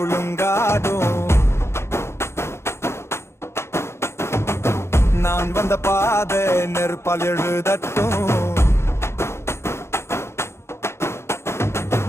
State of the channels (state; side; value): late; right; 0.13 ms